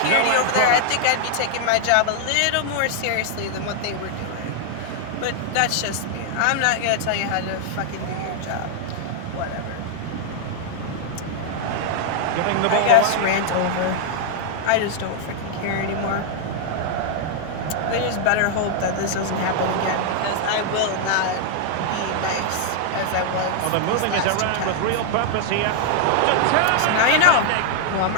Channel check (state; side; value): different; both; correlation 0.00